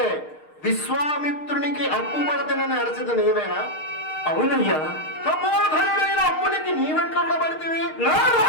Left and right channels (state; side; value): late; right; 6.5 ms